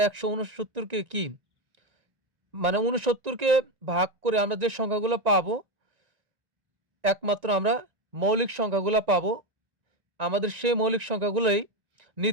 ১৬৯কে কি, মানে ৬৯কে ভাগ করে আমরা যে সংখ্যাগুলো পাবো, একমাত্র আমরা মৌলিক সংখ্যাগুলো পাবো। আমাদের সেই মৌলিক সংখ্যাগুলোই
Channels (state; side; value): late; left; 1.9 ms